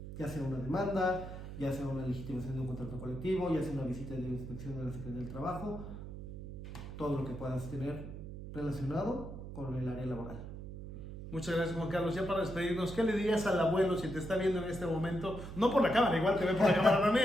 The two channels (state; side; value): noise; right; hum, 10 dB below the sound